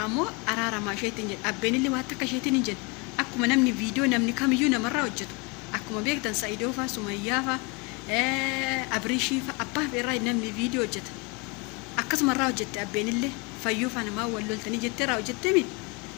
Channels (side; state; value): right; quieter; 29.0 dB